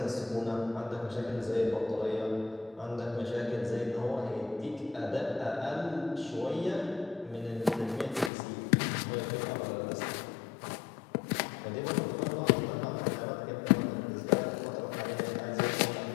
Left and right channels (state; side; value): drops out; right; at 8.3 s